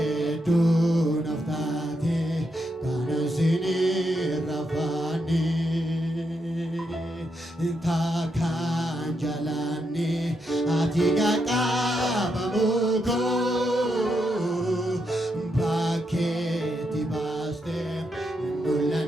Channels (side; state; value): both; normal; correlation 0.81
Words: ati qaqqabamuko bakkeetti baaste